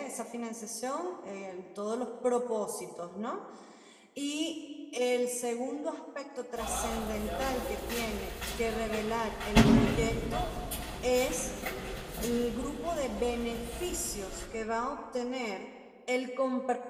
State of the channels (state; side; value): identical; both; correlation 1.00